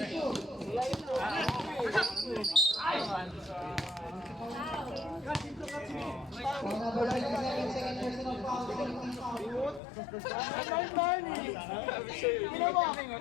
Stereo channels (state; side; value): drops out; right; at 9.8 s